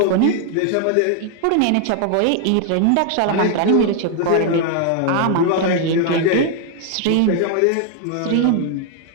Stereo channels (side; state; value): both; different; correlation 0.00